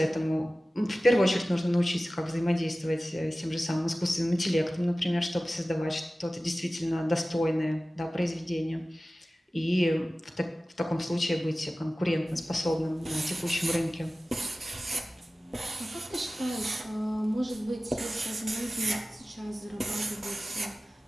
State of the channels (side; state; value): both; normal; correlation 0.96